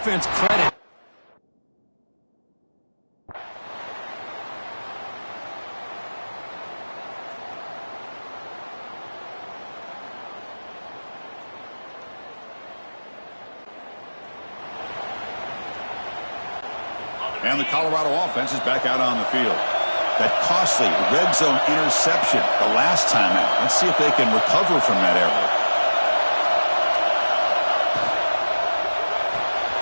credit. And the Colorado offense is back out on the field. That costly red zone interception the last time out. Let's see if they can recover from that error.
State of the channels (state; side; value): inverted; both; correlation -1.00